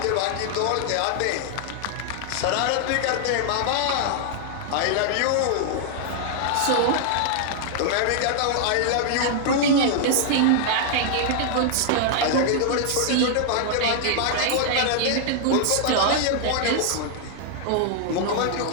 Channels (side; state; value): both; different; correlation 0.00